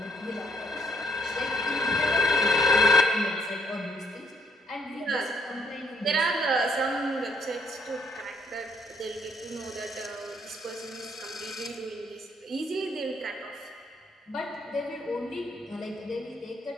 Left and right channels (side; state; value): both; normal; correlation 0.70